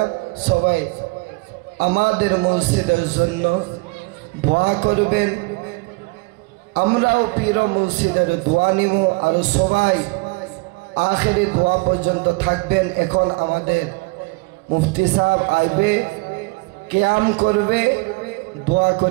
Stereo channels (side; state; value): left; quieter; 26.4 dB